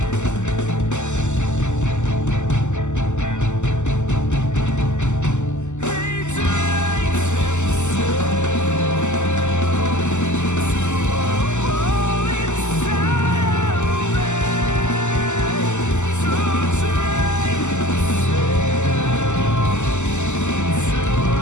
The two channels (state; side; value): late; right; 0.84 ms